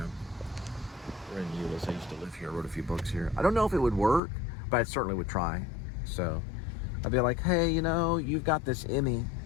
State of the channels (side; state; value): right; drops out; at 4.2 s